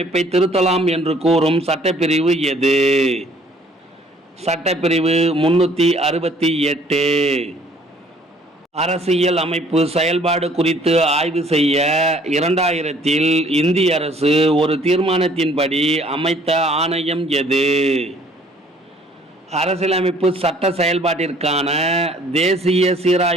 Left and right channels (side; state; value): both; normal; correlation 0.58